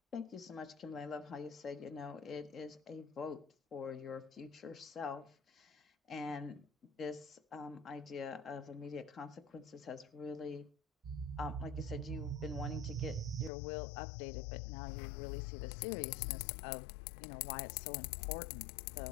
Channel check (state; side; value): drops out; right; at 13.5 s